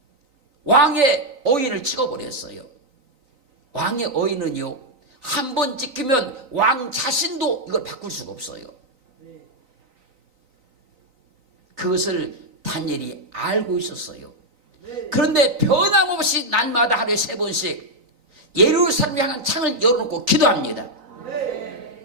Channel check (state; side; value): late; left; 3.9 ms